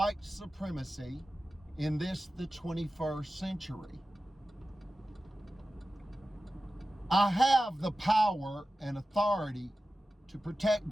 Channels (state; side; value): normal; both; correlation 0.94